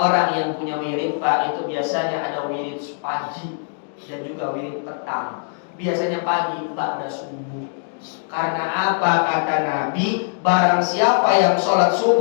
yang punya wirid, Pak, itu biasanya ada wirid pagi dan juga wirid petang. Biasanya pagi ba'da subuh. Karena apa? Kata Nabi, barang siapa yang sholat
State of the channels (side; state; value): right; silent; digital silence